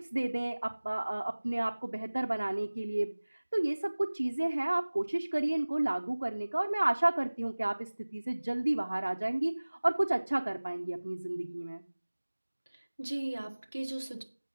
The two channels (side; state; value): both; inverted; correlation -1.00